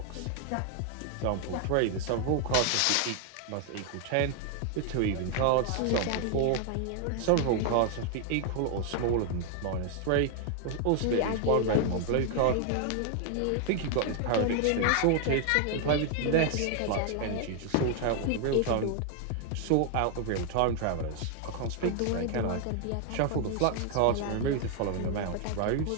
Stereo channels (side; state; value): both; different; correlation 0.00